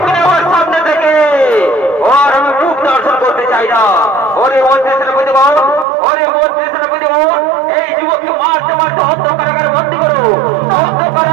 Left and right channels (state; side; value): drops out; left; at 5.9 s